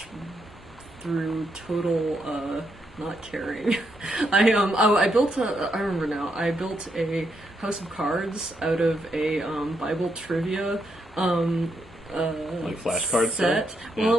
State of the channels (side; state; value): both; normal; correlation 0.79